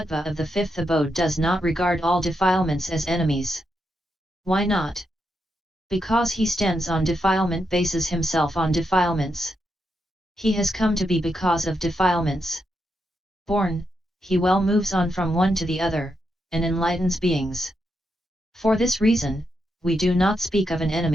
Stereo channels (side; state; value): both; normal; correlation 0.83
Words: of the fifth abode does not regard all defilements as enemies. Why not? Because he stands on defilement, bases himself on defilements. He has come to be because of defilements. Born, he well moves on from one to the other, and enlightens beings. For this reason, we do not speak of an